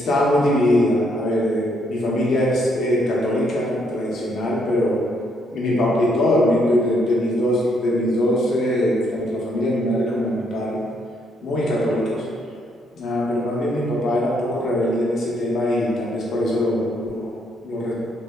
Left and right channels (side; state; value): both; normal; correlation 0.72